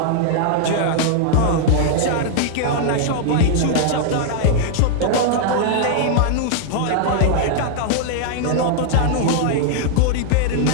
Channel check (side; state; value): both; different; correlation -0.01